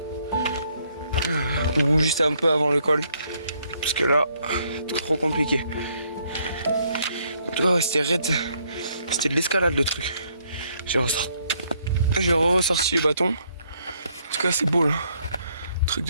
ou juste un peu avant le col parce que là c'est trop compliqué. En tout cas ouais, c'était raide, c'était de l'escalade le truc. J'ai ressorti les bâtons. En tout cas c'est beau là, truc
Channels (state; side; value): inverted; both; correlation -0.70